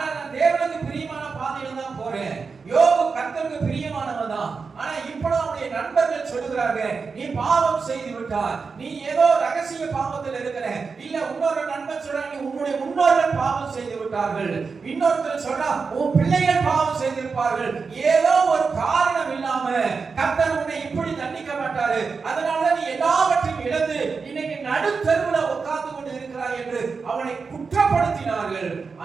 நான் தேவனுக்கு பிரியமான பாதையில தான் போறேன். யோபு கர்த்தருக்கு பிரியமானவன் தான். ஆனா இப்போ அவருடைய நண்பர்கள் சொல்லுகிறாங்க, நீ பாவம் செய்து விட்டாய், நீ ஏதோ ரகசிய பாவத்தில் இருக்கிற. இல்ல இன்னொரு நண்பன் சொல்றா, நீ உன்னுடைய முன்னோர்கள் பாவம் செய்து விட்டார்கள். இன்னொருத்தர் சொல்றா, உன் பிள்ளைகள் பாவம் செய்திருப்பார்கள். ஏதோ ஒரு காரணம் இல்லாம கர்த்தர் உன்னை இப்படி தண்டிக்க மாட்டாரு. அதனால நீ எல்லாவற்றையும் இழந்து இன்னைக்கு நடுத்தருவுல உட்கார்ந்து கொண்டு இருக்கிறாய் என்று அவனை குற்றப்படுத்தினார்கள்.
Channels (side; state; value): left; quieter; 5.0 dB